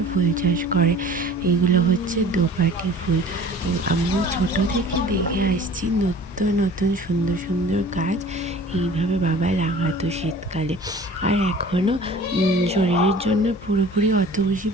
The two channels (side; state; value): both; normal; correlation 0.45